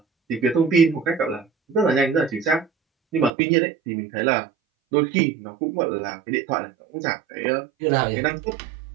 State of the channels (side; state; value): left; drops out; at 3.3 s